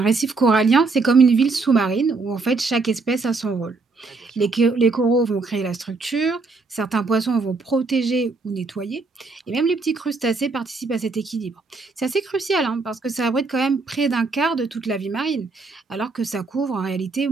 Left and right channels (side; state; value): left; quieter; 3.9 dB